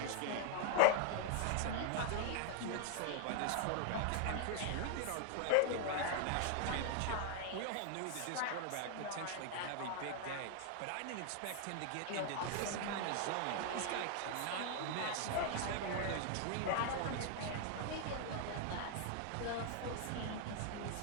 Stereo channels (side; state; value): both; different; correlation 0.00